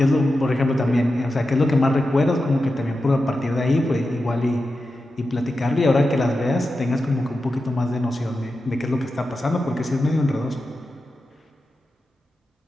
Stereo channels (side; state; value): both; normal; correlation 0.91